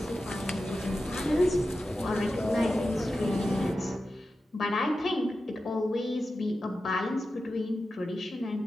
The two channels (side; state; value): both; normal; correlation 0.92